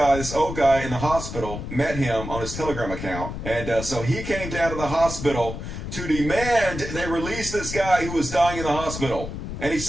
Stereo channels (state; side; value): noise; left; rumble, 7 dB below the sound